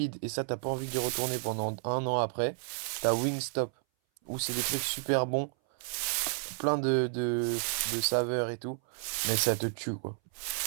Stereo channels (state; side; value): silent; left; 57 dB below the other